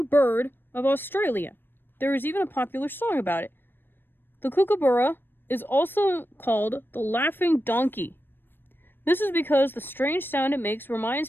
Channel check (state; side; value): late; right; 0.097 ms